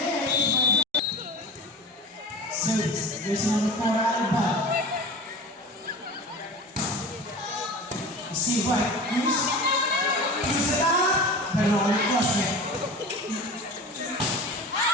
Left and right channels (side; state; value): both; normal; correlation 0.34